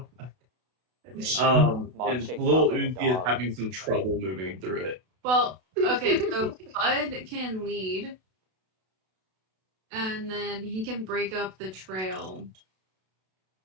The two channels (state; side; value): late; left; 32 ms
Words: Mog And shakes little off like a Uzi is dog. having some trouble moving through it. Well, okay, so Bud can lead. And then he can break up the trail.